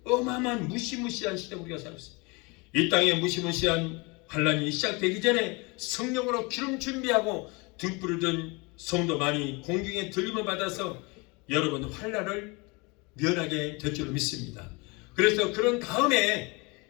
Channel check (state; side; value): quieter; right; 27.7 dB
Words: 어마어마한 무시무시한 시대 우리가 살고 있어요. 이 땅에 무시무시한 환란이 시작되기 전에 성령으로 기름 준비하고 등불을 든 성도만이 공중에 들림을 받아서 여러분 환난을 면하게 될 줄로 믿습니다. 그래서 그런 다음에